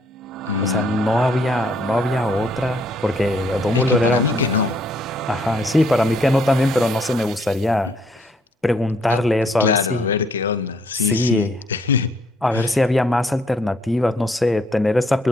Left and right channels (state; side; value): normal; both; correlation 0.68